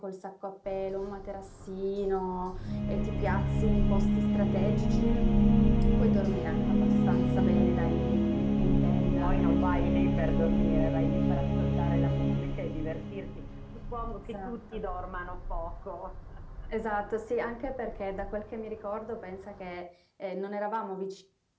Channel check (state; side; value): identical; both; correlation 1.00